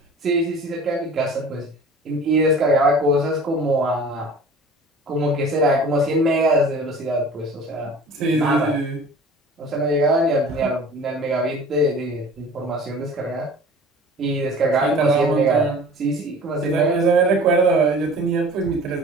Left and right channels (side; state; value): both; normal; correlation 0.43